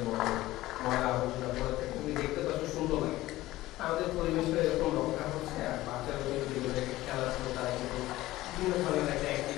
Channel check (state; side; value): quieter; right; 16.9 dB